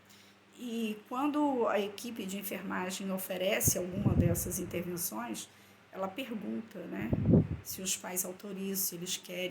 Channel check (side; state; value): both; identical; correlation 1.00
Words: E quando a equipe de enfermagem oferece alguma dessas intervenções, ela pergunta, né, se os pais autorizam, se eles